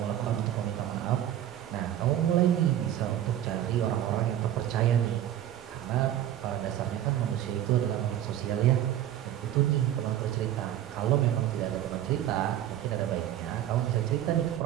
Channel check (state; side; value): quieter; left; 11.6 dB